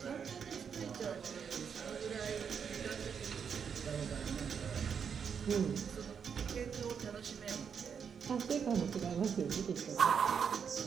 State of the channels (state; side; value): quieter; left; 7.0 dB